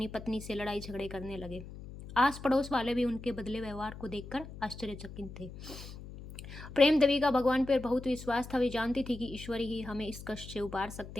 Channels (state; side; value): noise; left; hum, 13 dB below the sound